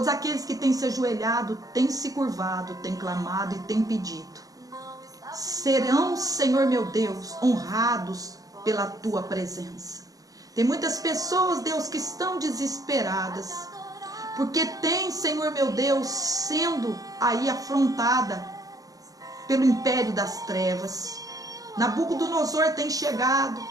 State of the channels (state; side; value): late; left; 0.17 ms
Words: aqueles que têm se ajoelhado, têm se curvado, têm clamado e têm pedido, serão, Senhor meu Deus, honrados pela tua presença. Tem muitas pessoas, Deus, que estão desesperadas, porque tem, Senhor meu Deus, sendo aí afrontada pelo império das trevas. Nabucodonosor tem chegado,